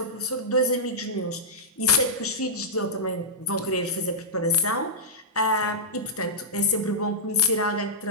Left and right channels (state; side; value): normal; both; correlation -0.12